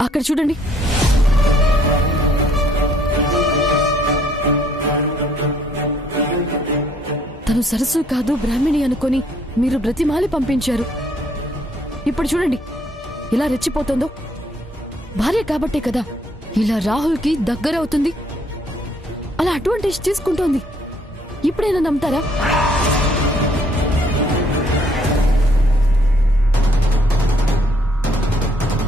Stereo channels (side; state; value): both; normal; correlation 0.66